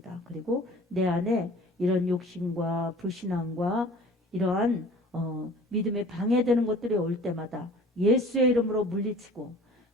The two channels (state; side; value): normal; both; correlation 0.47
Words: 그리고 내 안에 이런 욕심과 불신앙과 이러한 믿음에 방해되는 것들이 올 때마다 예수의 이름으로 물리치고